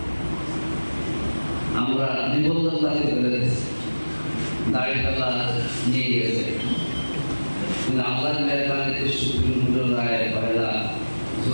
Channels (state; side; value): inverted; both; correlation -1.00